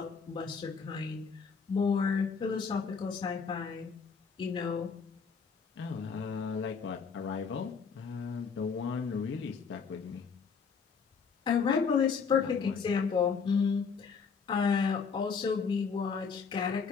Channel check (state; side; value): quieter; right; 5.7 dB